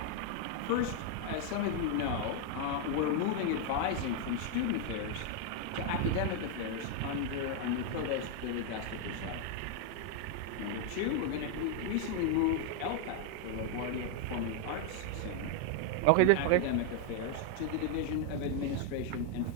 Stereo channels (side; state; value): both; different; correlation 0.00